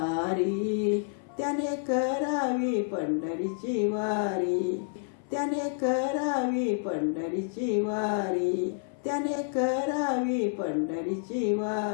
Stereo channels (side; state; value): right; silent; 58 dB below the other